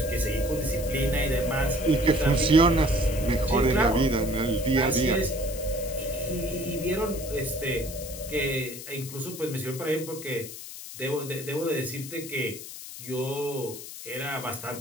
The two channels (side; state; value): left; noise; hiss, 12 dB below the sound